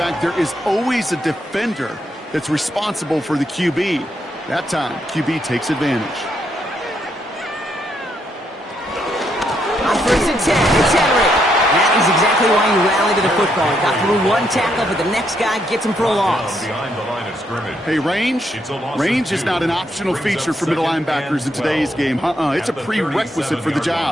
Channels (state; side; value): normal; both; correlation 0.76